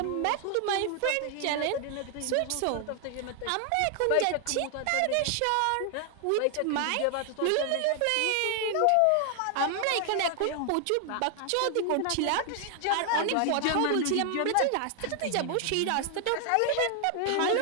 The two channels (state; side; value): different; both; correlation 0.00